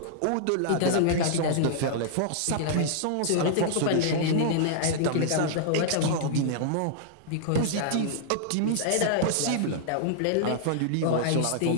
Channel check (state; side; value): different; both; correlation -0.01